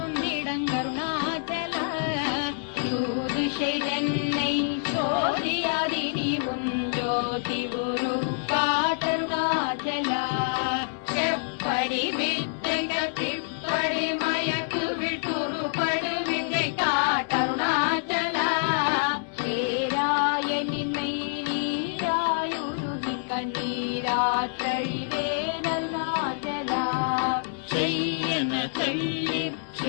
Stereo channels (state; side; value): silent; right; digital silence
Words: யூதிஷை சோதியாதி நீ உன் ஜோதி குரு காட்டருணாச்சலா. செப்படி வித்தைக திப்படி மயக்கு விட்டுருபடு வித்தை காட்டருணாச்சலா. சேராயனின்மை நீராயுருகி கண்ணீராற்றழிவேன் அருணாச்சலா. செய்யன தள்ளீர்